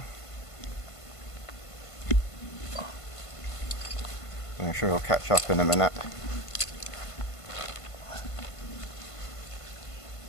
I'm sure he'll catch up in a minute.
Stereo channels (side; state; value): right; late; 1.5 ms